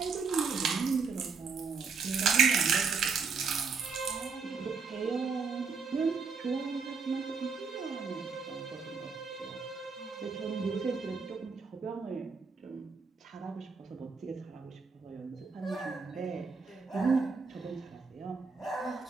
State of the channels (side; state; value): left; quieter; 5.0 dB